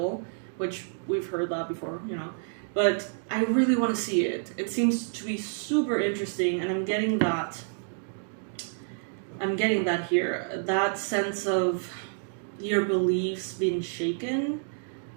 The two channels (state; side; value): silent; left; digital silence